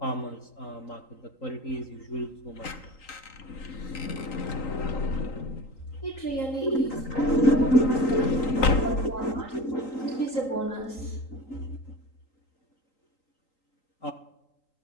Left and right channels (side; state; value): right; late; 3.8 ms